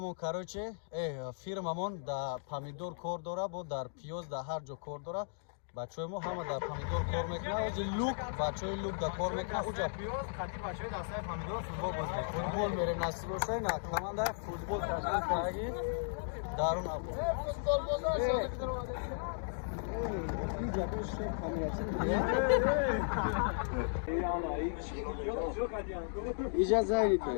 кароче фирмамон дар помидор кор дора бо дар пиёз дар ҳар ҷо кор дора бачаҳои мо ҳама дар помидор кор мекунад ози лук бачаҳои лук дар кор мекунад уҷа пиёз қати бачаҳои дастаи помидор футбол боз мекунад футбол мерем насиб бошад на командаи футбол ташкил кардаги дарун або иҷа зайнита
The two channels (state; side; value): silent; right; digital silence